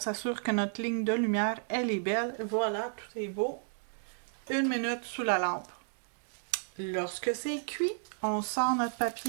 que notre ligne de lumière, elle est belle. Voilà, tout est beau. 1 minute sous la lampe. Lorsque c'est cuit, on sort notre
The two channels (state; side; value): silent; left; digital silence